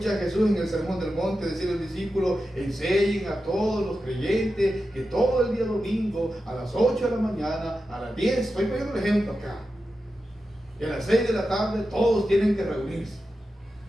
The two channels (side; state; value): both; normal; correlation 0.91